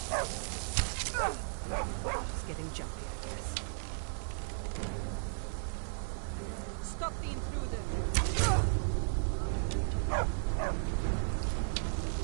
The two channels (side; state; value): left; silent; 54 dB below the other